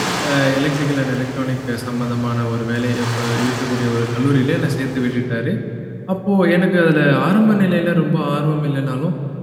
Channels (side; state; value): both; identical; correlation 1.00